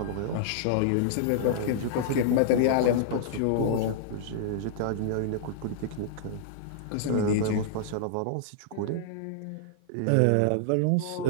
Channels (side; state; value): both; different; correlation -0.01